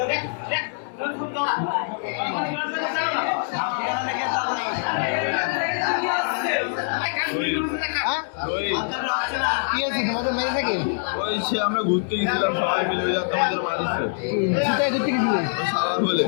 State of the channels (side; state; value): right; silent; 60 dB below the other